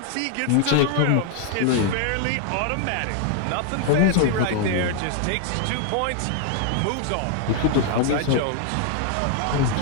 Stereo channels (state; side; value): different; both; correlation 0.00